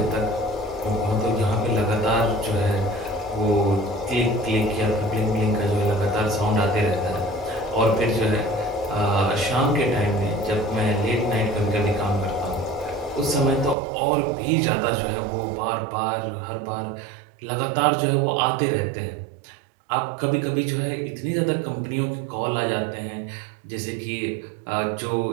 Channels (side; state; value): left; drops out; at 13.8 s